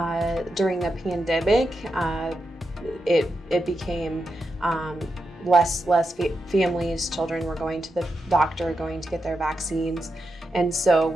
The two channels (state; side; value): normal; both; correlation 0.87